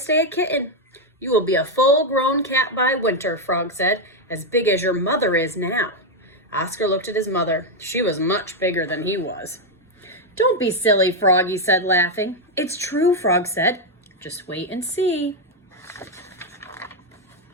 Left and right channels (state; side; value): normal; both; correlation 0.03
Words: a kitten? You will be a full-grown cat by winter, Frog said, as big as your mother is now. Oscar looked at his mother. She was much bigger than he was. Don't be silly, Frog, he said, laughing. It's true, Frog said. Just wait and see.